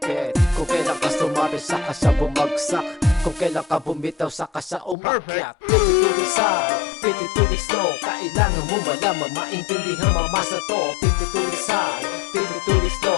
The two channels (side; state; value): right; drops out; at 5.0 s